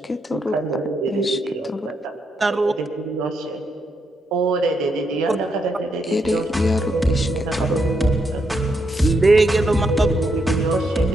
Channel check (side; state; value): both; normal; correlation 0.79